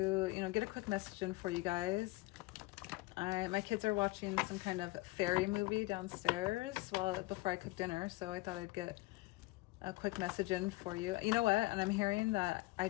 get a quick message in for you guys. My kids are watching some kind of fairy movie downstairs before I cook dinner, so I thought I'd get a quick message in for you. You know what? And I'm hearing that I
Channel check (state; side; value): quieter; right; 21.7 dB